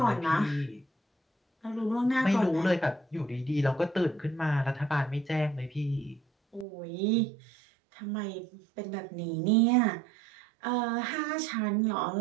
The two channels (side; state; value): left; drops out; at 6.7 s